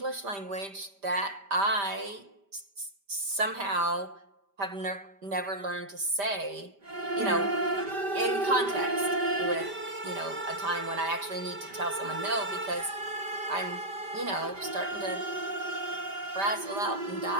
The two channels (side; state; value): left; late; 5.1 ms